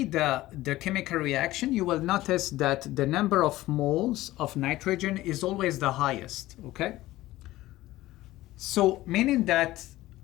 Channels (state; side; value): quieter; right; 16.7 dB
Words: the chemical reaction, you will notice that the number of moles of nitrogen is always the highest, okay? So meaning that